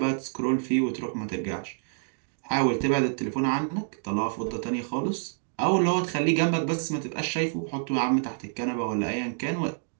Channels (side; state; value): left; silent; digital silence